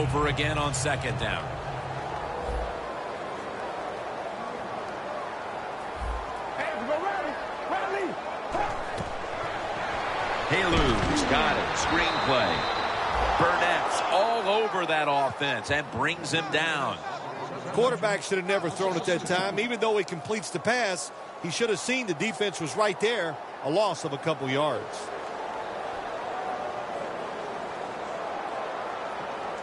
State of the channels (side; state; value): both; identical; correlation 1.00